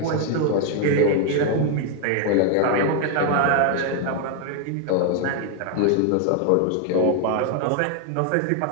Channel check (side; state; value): both; different; correlation 0.00